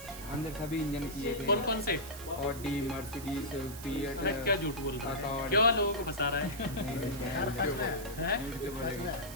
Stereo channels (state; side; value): noise; right; hiss, 13 dB below the sound